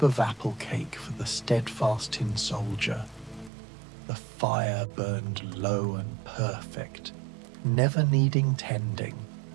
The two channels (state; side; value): drops out; left; at 3.5 s